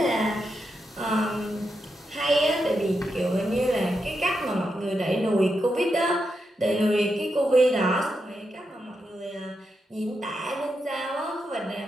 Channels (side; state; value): both; normal; correlation 0.85